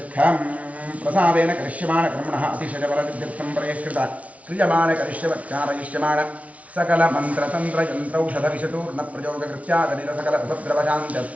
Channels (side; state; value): left; late; 0.067 ms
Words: प्रसादेन करिष्यमाणकर्मणः अतिशयबलसिद्ध्यर्थं परेष्कृत क्रियमाणकरिष्यवत्कारयिष्यमाण सकलमन्त्रतन्त्रयन्त्रौषधविषतूर्णप्रयोगकृत्यादनिरसकल